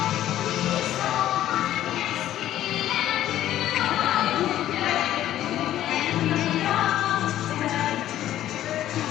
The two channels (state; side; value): quieter; right; 12.6 dB